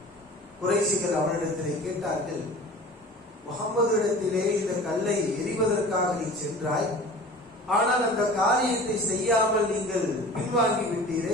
குறைஷிகள் அவனிடத்திலே கேட்டார்கள், முஹம்மது இடத்திலே இந்த கல்லை எறிவதற்காக நீ சென்றாய், ஆனால் அந்த காரியத்தை செய்யாமல் நீங்கள் பின்வாங்கி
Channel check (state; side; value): normal; both; correlation 0.41